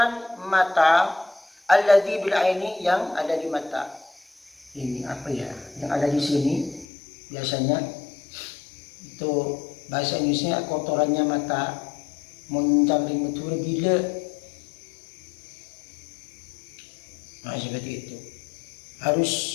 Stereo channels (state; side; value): drops out; right; at 6.9 s